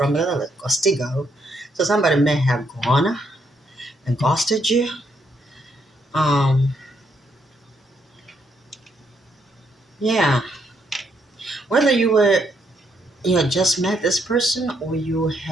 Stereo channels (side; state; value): both; normal; correlation 0.75